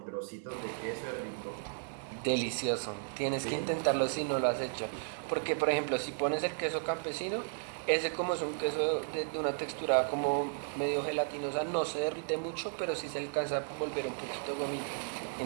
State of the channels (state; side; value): silent; left; digital silence